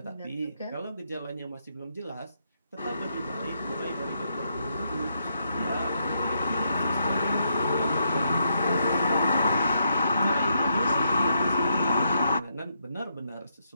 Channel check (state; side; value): inverted; both; correlation -0.78